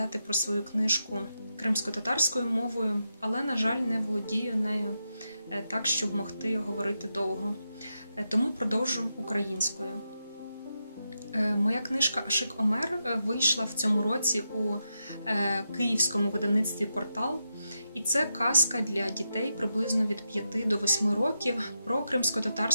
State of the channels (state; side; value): inverted; both; correlation -0.86